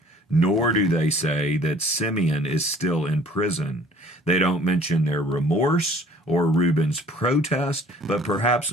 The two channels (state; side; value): normal; both; correlation 0.53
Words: Nor do they say that Simeon is still in prison. They don't mention their remorse or Reuben's protest, but perhaps